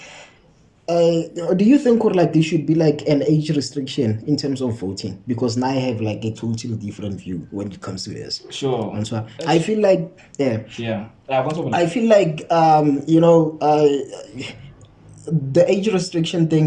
do you think like there should be like an age restriction in terms of voting? Because now I have like a totally different view when it comes to this. Sure. And so I feel like I feel like the age restriction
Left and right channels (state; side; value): identical; both; correlation 1.00